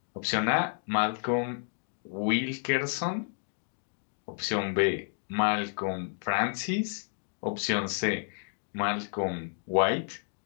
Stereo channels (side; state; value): right; silent; digital silence